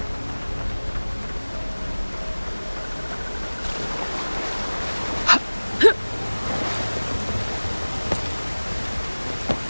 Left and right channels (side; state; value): both; inverted; correlation -1.00